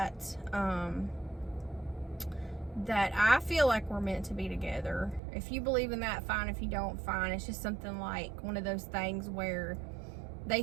That I feel like we're meant to be together. If you believe in that, fine. If you don't, fine. It's just something like one of those things where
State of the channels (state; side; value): drops out; left; at 5.2 s